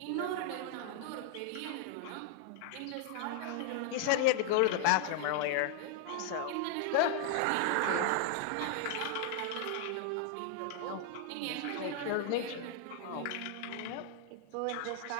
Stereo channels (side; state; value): both; different; correlation 0.00